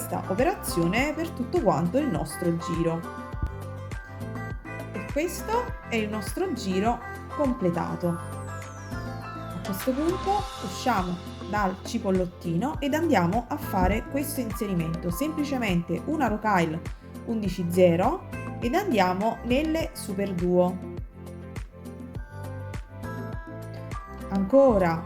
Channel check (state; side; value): identical; both; correlation 1.00